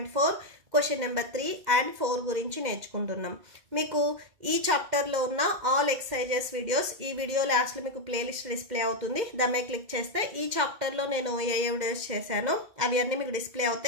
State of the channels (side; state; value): left; late; 2.1 ms